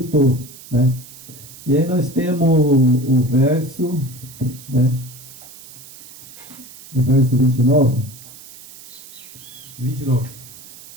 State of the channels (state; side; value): noise; right; hiss, 18 dB below the sound